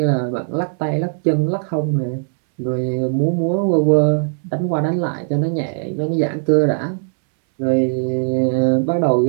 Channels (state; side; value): silent; left; 67 dB below the other